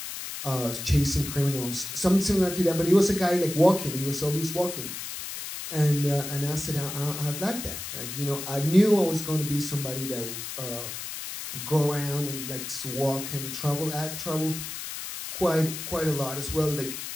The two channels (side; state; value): left; noise; hiss, 7 dB below the sound